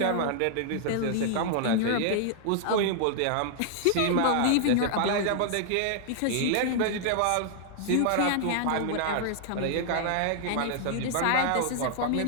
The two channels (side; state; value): both; different; correlation -0.01